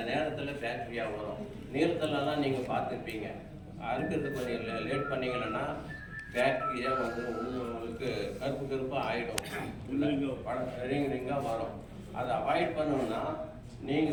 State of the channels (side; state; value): both; identical; correlation 1.00